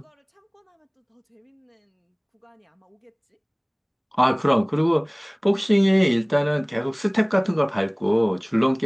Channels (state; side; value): identical; both; correlation 1.00